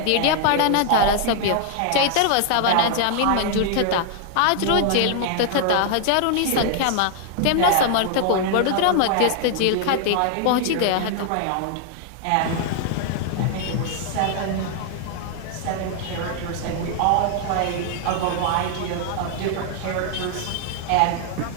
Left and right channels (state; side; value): different; both; correlation 0.00